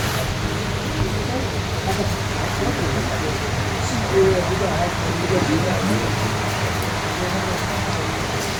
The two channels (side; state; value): both; identical; correlation 1.00